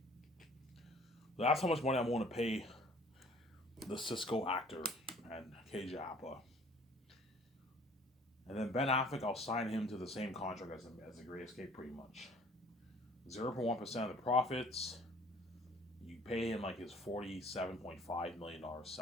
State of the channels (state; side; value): normal; both; correlation 0.52